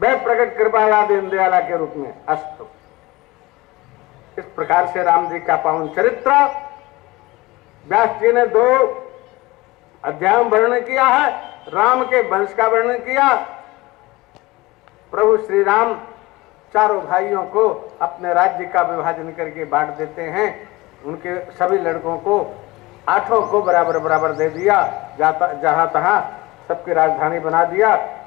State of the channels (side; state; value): right; quieter; 20.9 dB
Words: प्रकट कृपाला दीन दयाला के रूप में। अस्तु। इस प्रकार से राम जी का पावन चरित्र व्यास जी ने 2 अध्यायों में वर्णन किया है। राम के वंश का वर्णन किया। प्रभु श्री राम चारों भाइयों को अपने राज्य का विभाजन करके बांट देते हैं। उनके सभी लड़कों को 8 को बराबर बराबर दे दिया, जहां तहां सबकी राजधानी बना दिया